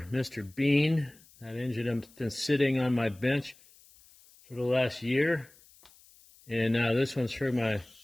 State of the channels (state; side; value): noise; left; hiss, 27 dB below the sound